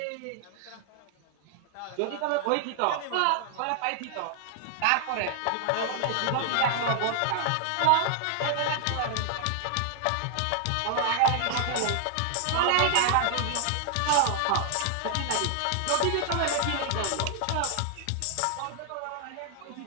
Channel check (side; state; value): both; different; correlation 0.00